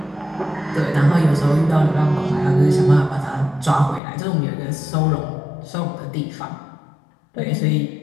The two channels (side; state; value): right; drops out; at 4.0 s